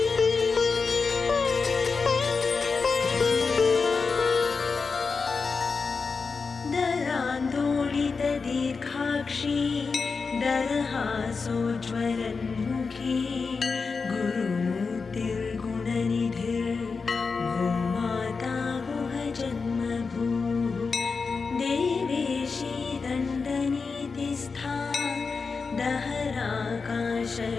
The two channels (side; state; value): right; quieter; 4.8 dB